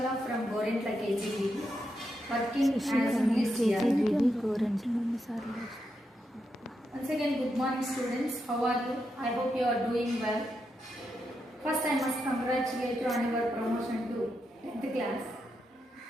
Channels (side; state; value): both; normal; correlation 0.84